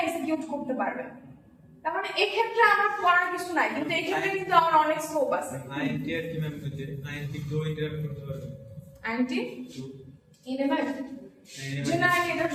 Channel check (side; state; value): both; identical; correlation 1.00